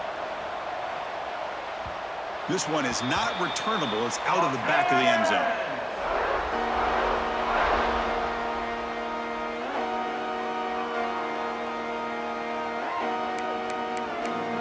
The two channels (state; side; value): identical; both; correlation 1.00